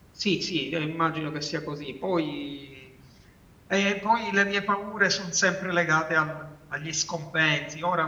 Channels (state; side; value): identical; both; correlation 1.00